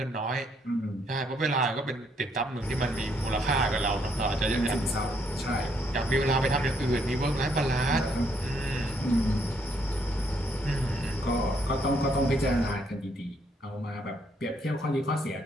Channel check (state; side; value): normal; both; correlation 0.71